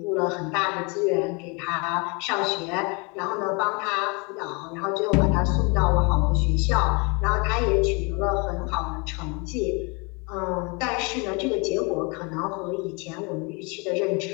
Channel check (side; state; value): right; quieter; 30.7 dB